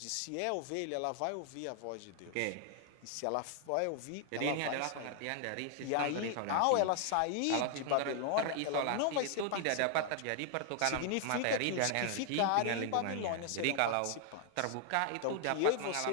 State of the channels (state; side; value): different; both; correlation 0.00